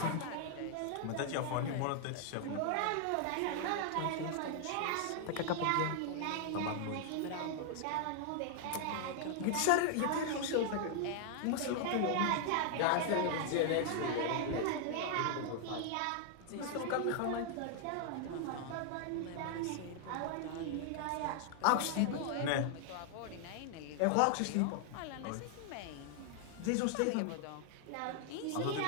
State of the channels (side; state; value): both; different; correlation 0.00